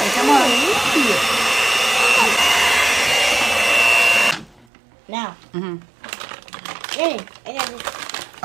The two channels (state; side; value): drops out; left; at 4.7 s